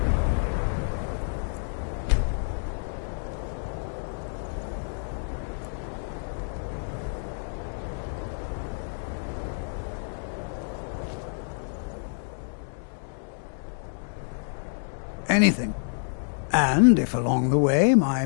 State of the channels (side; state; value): right; silent; digital silence